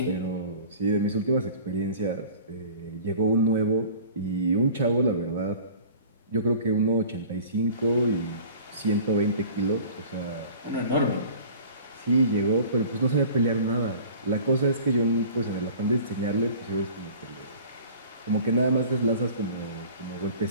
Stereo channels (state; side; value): inverted; both; correlation -0.44